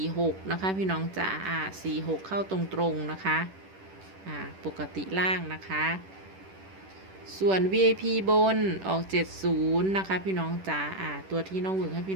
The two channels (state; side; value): late; left; 10 ms